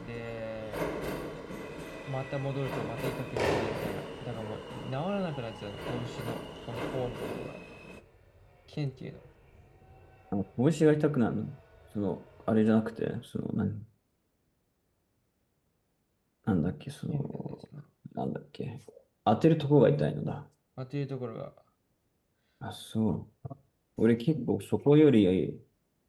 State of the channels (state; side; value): identical; both; correlation 1.00